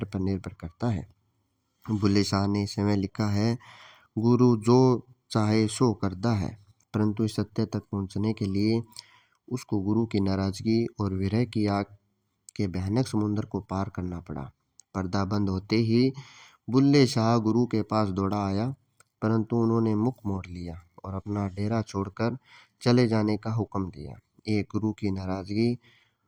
पर निर्भर करता है। बुल्ले शाह ने समय लिखा है, गुरु जो चाहे सो करता है, परंतु इस सत्य तक पहुंचने के लिए उसको गुरु की नाराजगी और विरह की आग के भयानक समुद्र को पार करना पड़ा। पर्दा बंद होते ही बुल्ले शाह गुरु के पास दौड़ा आया, परंतु उन्होंने मुख मोड़ लिया और अपना डेरा छोड़कर चले जाने का हुक्म दिया। एक गुरु की नाराजगी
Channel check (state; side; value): identical; both; correlation 1.00